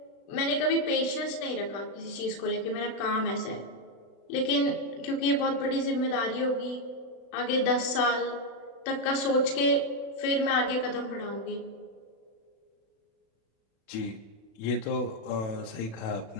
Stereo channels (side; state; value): right; late; 36 ms